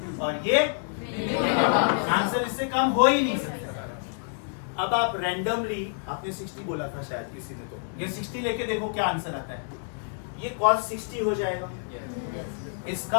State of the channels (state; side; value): silent; right; digital silence